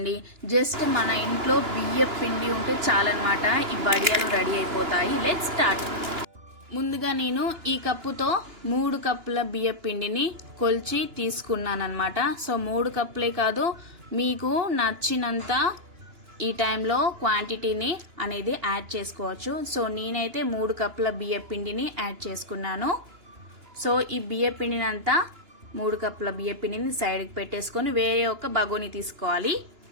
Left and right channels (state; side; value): late; left; 2.9 ms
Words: జస్ట్ మన ఇంట్లో బియ్య పిండి ఉంటే చాలన్నమాట. ఈ వడియాలు రెడీ అయిపోతాయి. Let's start. ముందుగా నేను ఈ కప్పుతో 3 కప్పుల బియ్య పిండిని కొలిచి తీసుకున్నానమాట. సో 3 కప్పులే కాదు, మీకు నచ్చినంత ఈ టైంలో క్వాంటిటీని అనేది యాడ్ చేసుకోవచ్చు. సో నేనైతే 3 కప్పుల బియ్య పిండిని యాడ్ చేసుకున్నాను. సో ఈ బియ్య పిండిని అంతా 3 కప్పుల బియ్య పిండిని సైడ్కి పెట్టేసుకొని వేరే ఒక బగోని తీసుకోవాలి.